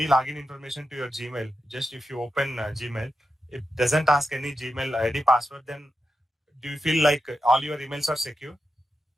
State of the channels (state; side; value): normal; both; correlation 0.88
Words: login information to your Gmail, just if you open Gmail, it doesn't ask any Gmail ID password, then do you feel like all your emails are secure?